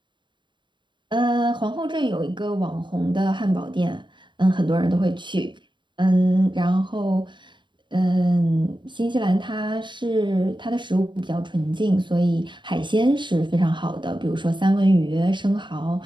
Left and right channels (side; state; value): left; late; 0.23 ms